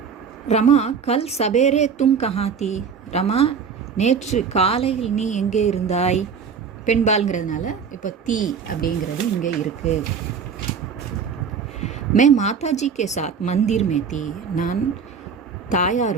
ரமா கல் சபேரே தும் கஹாத்தி. ரமா நேற்று காலையில் நீ எங்கே இருந்தாய். பெண்பால்ங்கிறதுனால இப்போ தீ அப்படிங்கிறது இங்கே இருக்குது. மே மாதாஜி கே சாத் மந்திர் மே தீ. நான்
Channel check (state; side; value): quieter; left; 6.3 dB